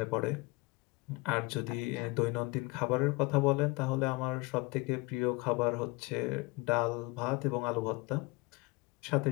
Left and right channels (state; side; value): quieter; right; 25.1 dB